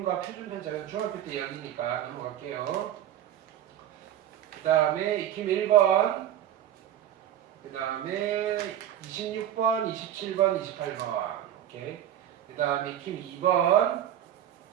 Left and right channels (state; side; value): quieter; left; 11.2 dB